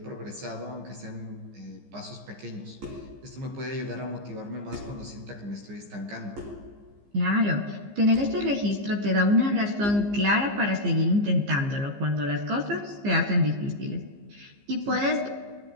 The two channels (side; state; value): left; late; 15 ms